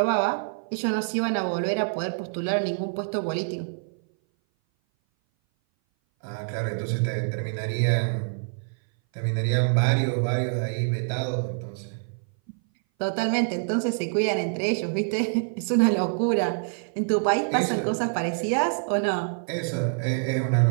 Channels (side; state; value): left; silent; 58 dB below the other